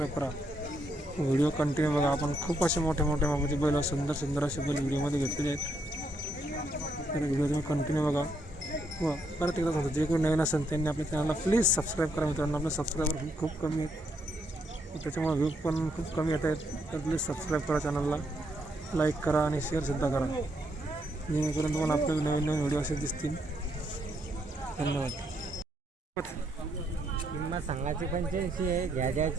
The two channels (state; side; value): normal; both; correlation 0.76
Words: करा. व्हिडिओ कंटिन्यू बघा. आपण खूप असे मोठे मापाचे बैल व सुंदर असे बैल व्हिडिओमध्ये घेतलेले आहेत. तर व्हिडिओ तुम्ही कंटिन्यू बघा व परत एकदा सांगतो, जे कोणी नवीन असेल त्यांनी आपल्या चॅनलला प्लीज सबस्क्राईब करा. मित्रांनो, आपले सबस्क्रायबर खूप कमी आहेत, त्याच्यामुळे व्ह्यू पण खूप कमी येत आहेत. तर प्लीज सबस्क्राईब करा चॅनलला, लाईक करा आणि शेअरसुद्धा करा, जेणेकरून तुम्हाला आपले नवीन व्हिडिओ असे दिसतील. धन्यवाद. किंमत सांगायची 85 आहे,